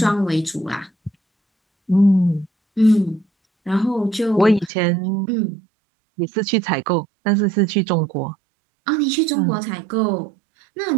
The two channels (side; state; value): left; drops out; at 4.7 s